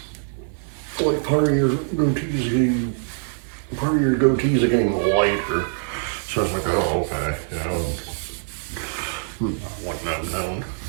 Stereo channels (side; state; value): left; silent; digital silence